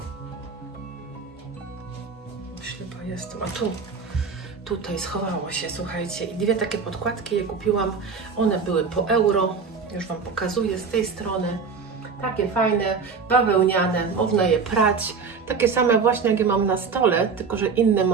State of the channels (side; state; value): left; quieter; 5.3 dB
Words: Ślepa jestem, a tu. Tutaj schowało się, słuchajcie. I dwie takie podkładki je kupiłam. One były po euro. Już Wam pokazuję z tej strony. Takie fajne, bawełniane, można je prać. Takie same właśnie, jak je mam na stole, tylko że inny